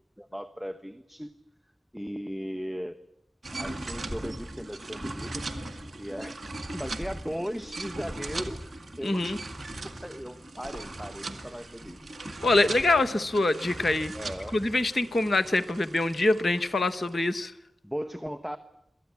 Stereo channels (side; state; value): both; normal; correlation 0.91